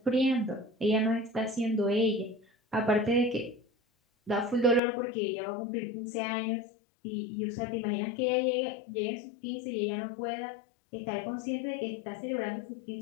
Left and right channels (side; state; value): right; drops out; at 4.8 s